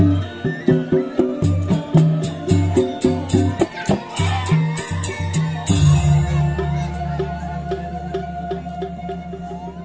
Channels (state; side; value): identical; both; correlation 1.00